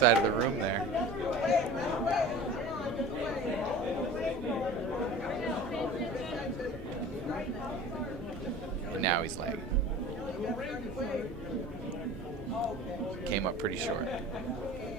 of the room there. And now he's lagging. Came up pretty short.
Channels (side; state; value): both; normal; correlation 0.38